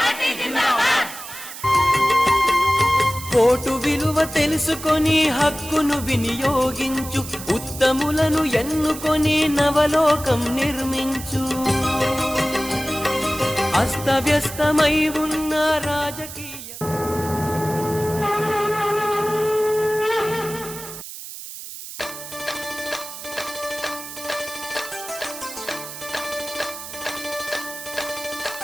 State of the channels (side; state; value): right; noise; hiss, 11 dB below the sound